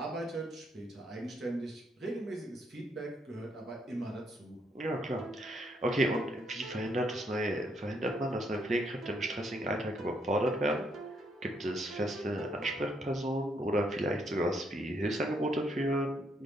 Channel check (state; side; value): normal; both; correlation 0.73